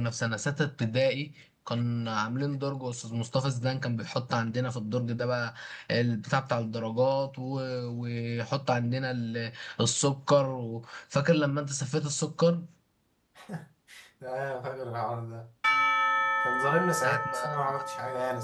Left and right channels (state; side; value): identical; both; correlation 1.00